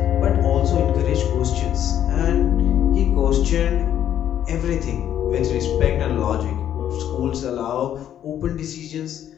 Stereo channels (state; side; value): quieter; right; 10.5 dB